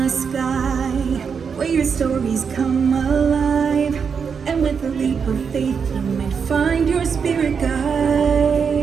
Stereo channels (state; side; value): quieter; left; 6.3 dB